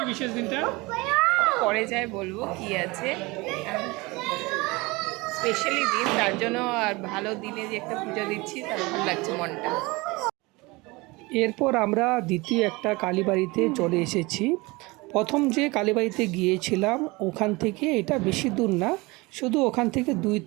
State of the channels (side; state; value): left; quieter; 23.7 dB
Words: বিশেষ দিনটা পরে যাই বলবো কি আছে, স্পেশালি দিন, তার জন্য। আর ভালো দিনে যে একটা পুজো দিচ্ছি, তার ভালো লাগছে মনটা। এরপর আমরা দ্বিতীয় একটা কালীবাড়িতে চলে এসেছি। প্রথম যে কালীবাড়িতে গিয়েছিলাম ওখান থেকে এটা বেশি দূর না, শুধু ওখান থেকে 2